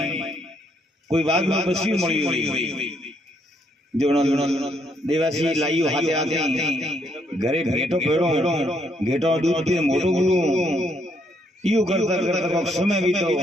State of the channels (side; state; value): both; normal; correlation 0.72